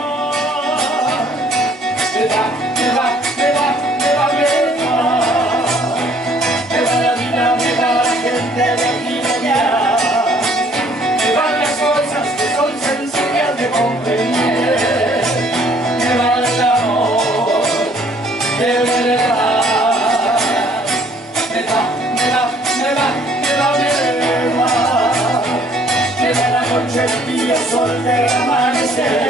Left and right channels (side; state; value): both; normal; correlation 0.60